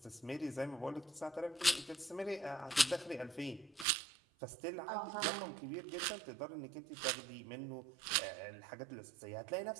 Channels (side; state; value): left; drops out; at 3.9 s